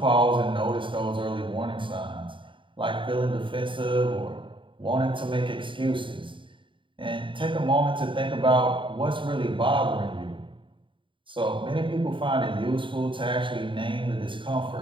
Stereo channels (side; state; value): left; late; 0.24 ms